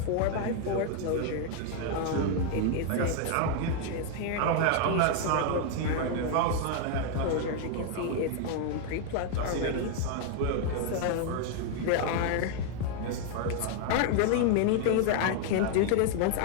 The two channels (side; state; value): both; different; correlation 0.00